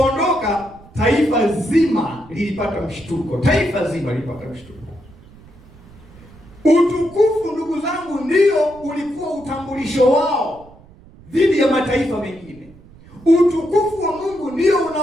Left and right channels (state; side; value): noise; right; rumble, 23 dB below the sound